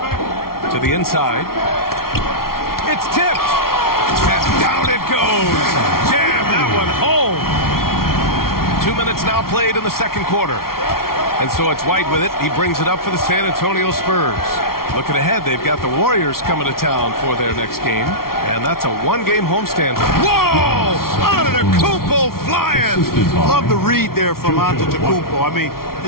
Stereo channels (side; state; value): right; late; 0.93 ms